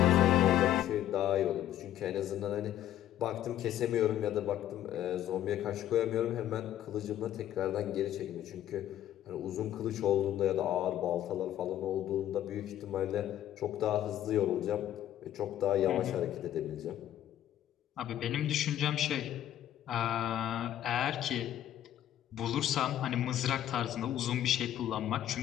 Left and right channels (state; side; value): quieter; right; 11.9 dB